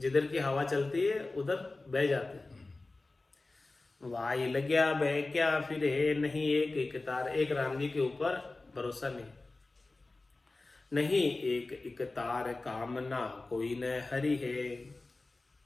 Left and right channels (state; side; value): quieter; right; 3.3 dB